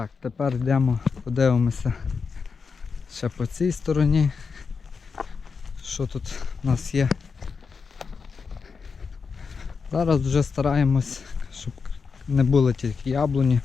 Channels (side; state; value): right; quieter; 5.3 dB